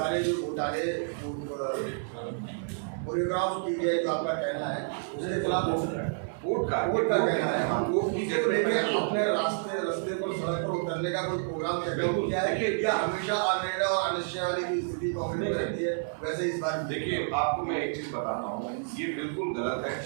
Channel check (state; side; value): silent; left; digital silence